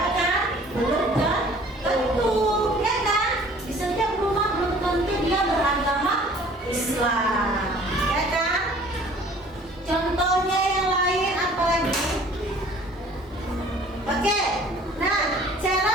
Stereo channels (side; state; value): both; normal; correlation 0.52